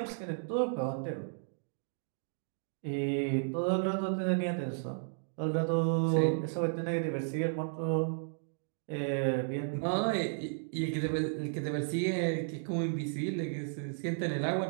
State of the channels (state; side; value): silent; left; digital silence